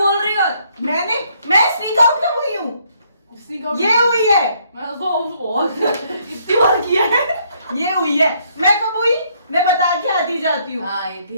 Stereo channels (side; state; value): both; inverted; correlation -0.69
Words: रही हो। मैं स्नीक आउट कब हुई हूँ? इसने कहा- ये हुई है, मैं तो बहुत इतनी बार किया है। ये हुई है। मैं कब हुई? मैं बता के आती जाती हूँ। हाँ, ये